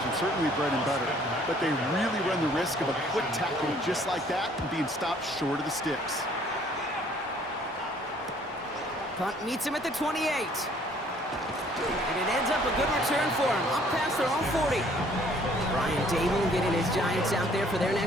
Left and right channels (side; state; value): both; normal; correlation 0.59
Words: certainly bread and butter. But they really run the risk of a quick tackle just like that and being stopped short of the sticks. Punt meets him at the 28. And it ends up a good return for him. Up past their own 40. Brian Dable getting his Giants out there for their